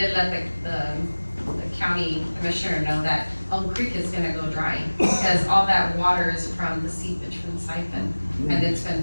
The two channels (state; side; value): inverted; both; correlation -1.00